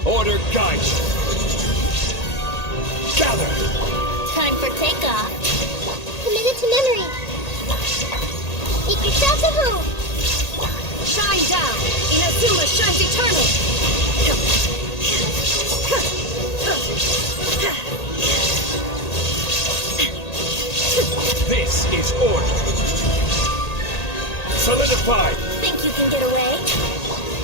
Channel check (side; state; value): right; late; 1.8 ms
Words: Order guide! Gather! Time for takeoff. Committed to memory. Make yourselves at home. Shine down! Inazuma shines eternal! This is order! Solidify! Think you can get away?